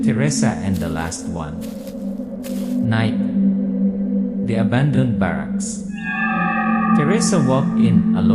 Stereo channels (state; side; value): noise; right; rumble, 24 dB below the sound